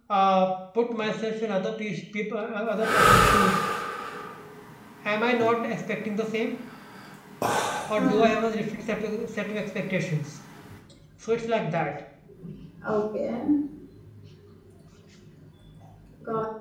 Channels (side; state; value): both; identical; correlation 1.00